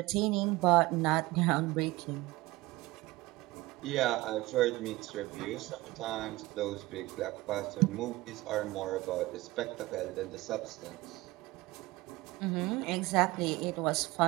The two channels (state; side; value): quieter; left; 19.8 dB